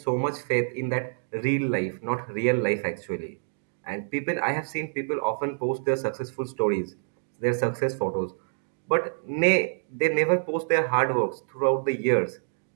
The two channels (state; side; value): silent; left; digital silence